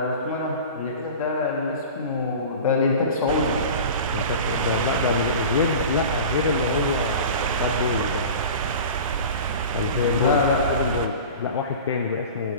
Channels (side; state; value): both; inverted; correlation -0.36